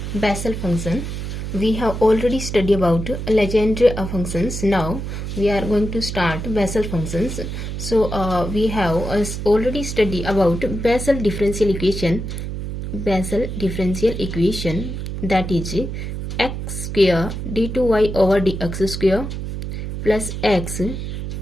Bessel function. We have already studied about Legendre functions. Now we are going to start Bessel functions. So we have already studied about Bessel differential equation. Bessel differential equation, that is x square d2y over dx square plus x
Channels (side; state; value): right; noise; hum, 5 dB below the sound